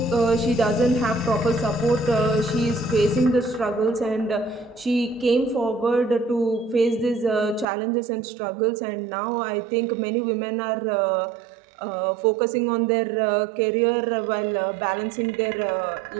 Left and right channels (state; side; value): drops out; left; at 7.7 s